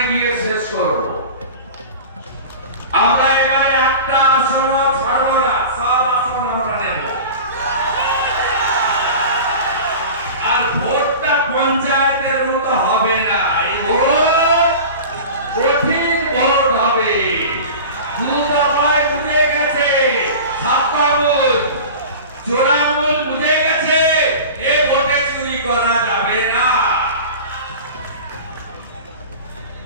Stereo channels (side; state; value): both; inverted; correlation -0.34